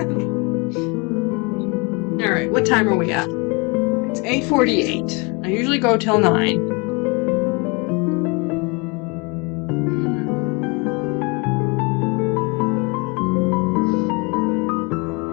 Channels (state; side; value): quieter; right; 29.6 dB